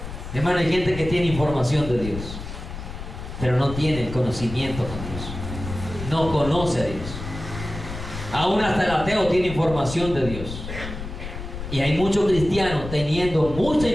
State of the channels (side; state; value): left; noise; rumble, 9 dB below the sound